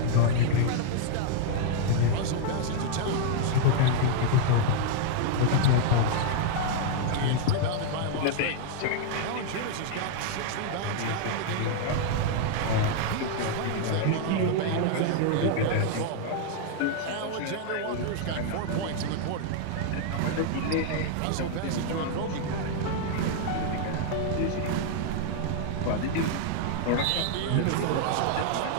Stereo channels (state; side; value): different; both; correlation 0.00